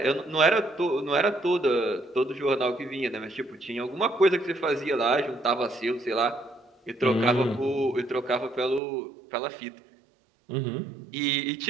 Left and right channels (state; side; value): drops out; left; at 8.8 s